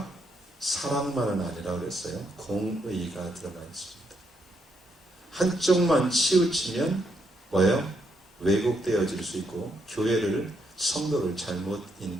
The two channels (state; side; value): normal; both; correlation 0.77